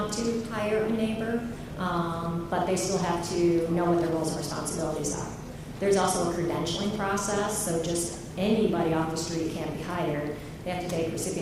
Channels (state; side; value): identical; both; correlation 1.00